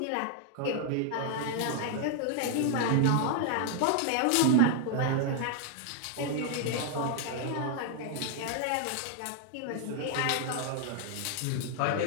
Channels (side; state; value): both; different; correlation 0.00